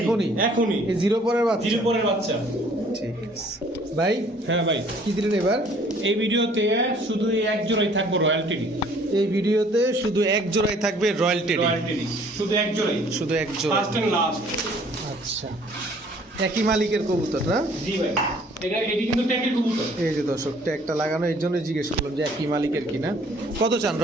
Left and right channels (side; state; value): both; normal; correlation 0.57